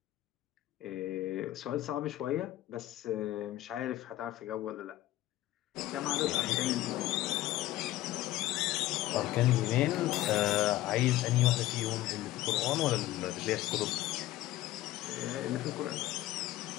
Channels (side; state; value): right; quieter; 15.6 dB